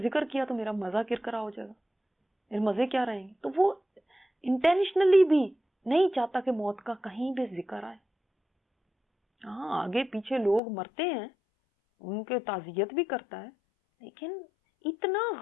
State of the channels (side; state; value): right; drops out; at 10.6 s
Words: ذکر کیا تو میرا مزہ کرکرا ہو جائے گا، میرے مزے کیا رہیں گے۔ تو وہ انٹینشنلی بھی نہیں چاہتا کہ موت کا کہیں بھی ذکر آئے۔ ہاں آگے پیچھے لوگ مرتے ہیں، ان کے تعزیت بھی کرتا ہے، لیکن اتنا